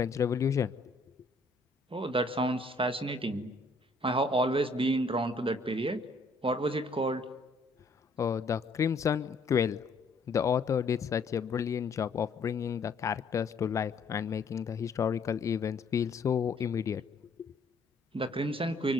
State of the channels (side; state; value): right; quieter; 3.1 dB